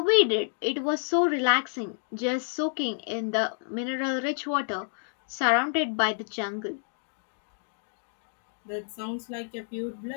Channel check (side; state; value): right; silent; digital silence